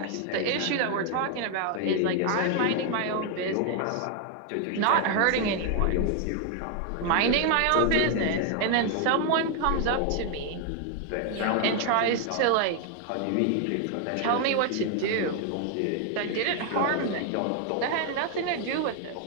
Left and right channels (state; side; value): different; both; correlation 0.00